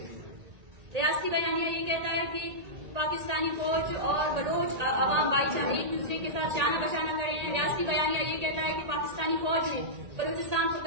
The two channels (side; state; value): left; late; 1.8 ms